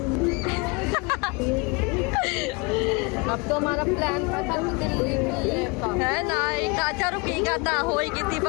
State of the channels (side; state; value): right; quieter; 28.8 dB